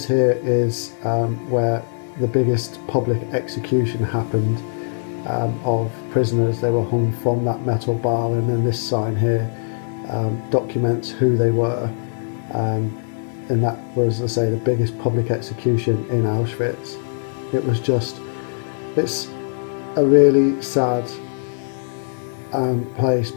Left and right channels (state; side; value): silent; right; digital silence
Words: here is where the biggest public execution happened of prisoners. They were hung from that metal bar, and then this sign here documents who they were. And that was, as I say, the biggest public execution in Auschwitz. It was just, it's a really sad place,